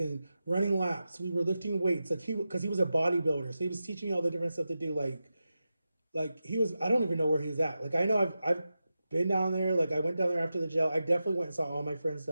running laps, we were lifting weights, like because he was a bodybuilder, so he was teaching me all the different stuff to do, like he was. I don't even know where he was at. Like I know I've been down there. Like I went down there after the jail. I definitely went and saw all my friends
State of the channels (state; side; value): inverted; both; correlation -0.91